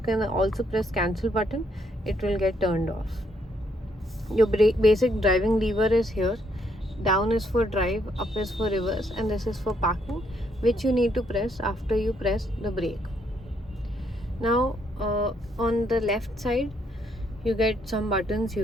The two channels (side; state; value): both; normal; correlation 0.72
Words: also press cancel button. It will get turned off. Your basic driving lever is here. Down is for drive, up is for reverse, and this is for parking, which you need to press after you press the brake. Now on the left side, you get some buttons